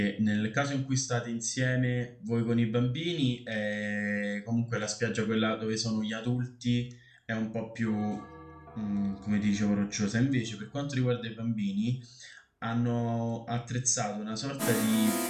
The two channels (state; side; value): identical; both; correlation 1.00